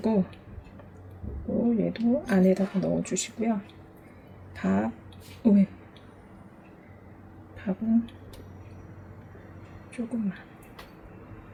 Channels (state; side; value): identical; both; correlation 1.00